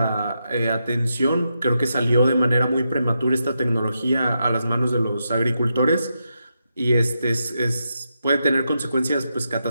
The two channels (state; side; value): inverted; both; correlation -0.85